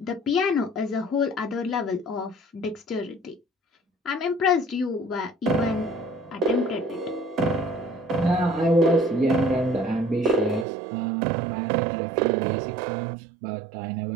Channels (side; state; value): left; drops out; at 10.7 s